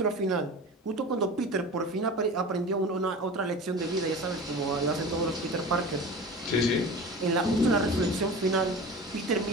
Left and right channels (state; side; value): normal; both; correlation 0.34